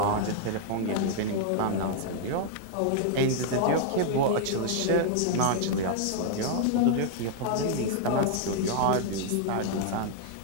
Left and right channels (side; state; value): both; different; correlation -0.01